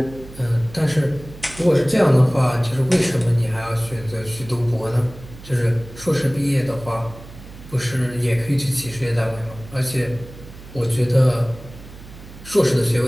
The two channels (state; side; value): noise; right; hum, 17 dB below the sound